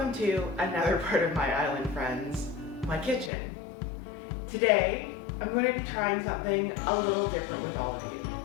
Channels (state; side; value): drops out; right; at 3.3 s